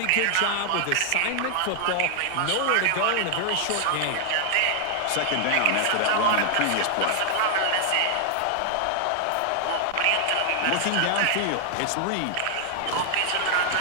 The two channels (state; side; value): different; both; correlation 0.00